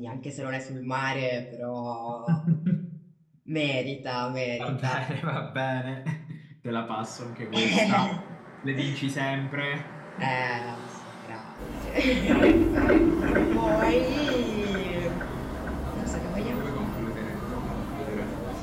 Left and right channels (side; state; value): both; identical; correlation 1.00